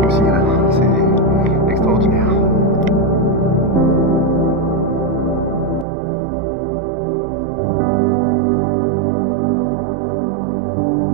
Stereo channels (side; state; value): left; drops out; at 5.9 s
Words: aussi là. C'est extraordinaire.